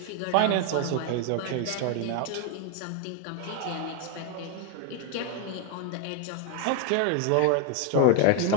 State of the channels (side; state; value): both; different; correlation 0.00